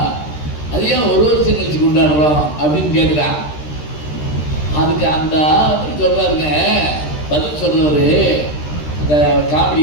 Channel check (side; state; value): right; late; 13 ms